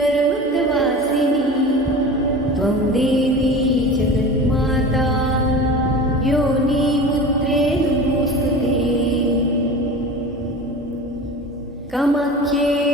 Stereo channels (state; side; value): normal; both; correlation 0.34